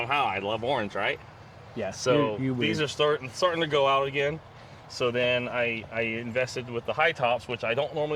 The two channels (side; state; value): both; identical; correlation 1.00